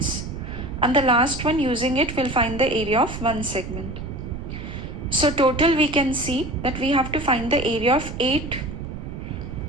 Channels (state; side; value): noise; right; rumble, 8 dB below the sound